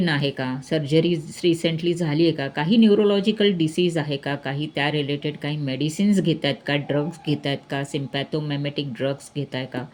आहे का, सर्जरी रिसेंटली झाली आहे का, काही न्यूरोलॉजिकल डिसीज आहे का, काही त्या रिलेटेड काही मेडिसिन्स घेत आहेत का, ड्रग्स घेत आहेत का, सिम्पॅथोमेमेटिक ड्रग्स घेत आहे का,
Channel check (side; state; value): both; identical; correlation 1.00